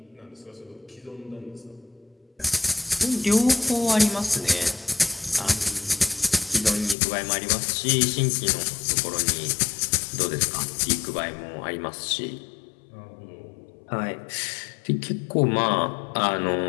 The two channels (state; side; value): drops out; right; at 7.0 s